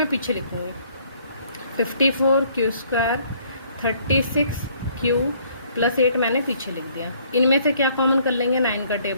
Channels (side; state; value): both; inverted; correlation -0.62